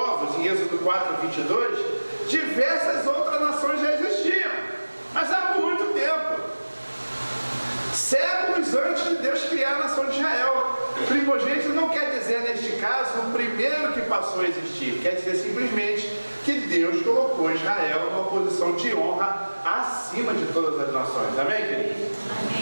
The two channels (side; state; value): both; inverted; correlation -1.00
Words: em Êxodo 4, 22, diversas outras nações já existiam, mas há muito tempo. Séculos antes de Deus criar a nação de Israel. Primogênito não quer dizer, neste caso, o primeiro que passou a existir. Quer dizer simplesmente que Deus colocou Israel numa posição de honra acima de todas as nações. Amém, queridos?